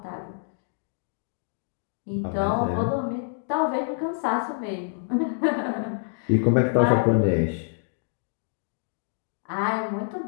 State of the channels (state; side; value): silent; right; digital silence